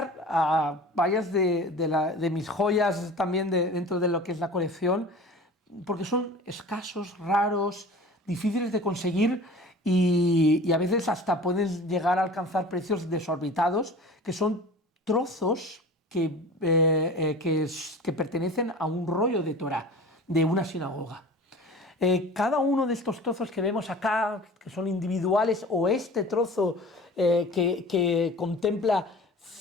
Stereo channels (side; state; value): both; normal; correlation 0.40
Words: a varias de mis joyas también dentro de lo que es la colección, porque son escasos, raros, difíciles de conseguir y a veces hasta pueden llegar a alcanzar precios desorbitados, que son trozos que pertenecen a un rollo de Torá, de una sinagoga. Cada uno de estos trozos que vemos acá, que son individuales, o este trozo que contempla